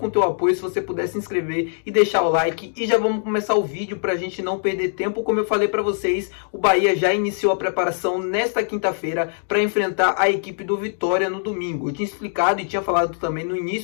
o teu apoio se você puder se inscrever e deixar o like. E já vamos começar o vídeo para a gente não perder tempo. Como eu falei para vocês, o Bahia já iniciou a preparação nesta quinta-feira para enfrentar a equipe do Vitória no domingo. Eu tinha explicado e tinha falado também no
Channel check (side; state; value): right; silent; digital silence